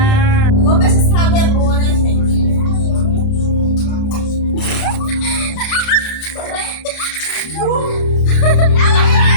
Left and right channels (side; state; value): right; late; 31 ms